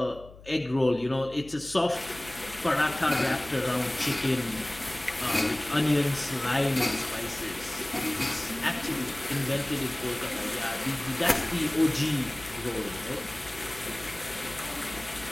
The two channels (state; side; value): noise; left; hum, 19 dB below the sound